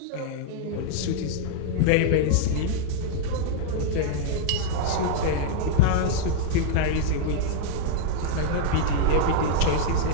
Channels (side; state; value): both; different; correlation -0.01